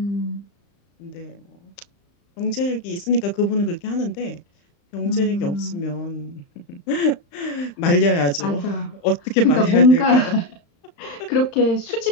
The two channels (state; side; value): late; right; 35 ms